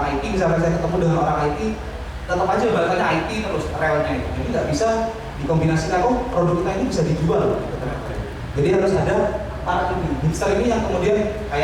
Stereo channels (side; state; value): both; identical; correlation 1.00